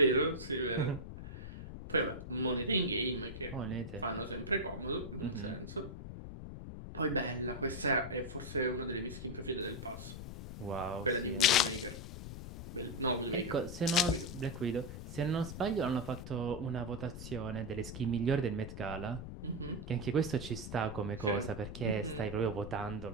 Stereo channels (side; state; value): left; noise; rumble, 9 dB below the sound